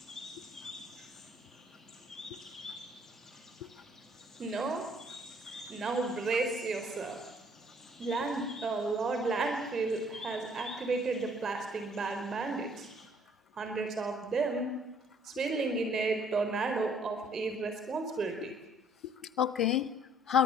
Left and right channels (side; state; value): both; normal; correlation 0.60